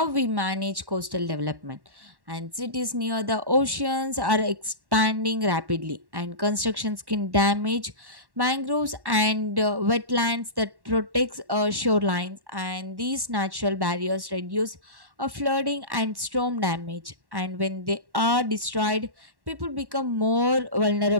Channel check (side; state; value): left; late; 1.1 ms